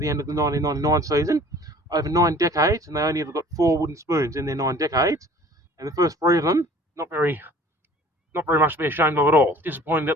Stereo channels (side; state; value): both; normal; correlation 0.49